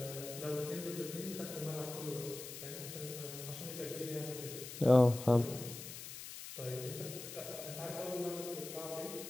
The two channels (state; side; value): noise; left; hiss, 10 dB below the sound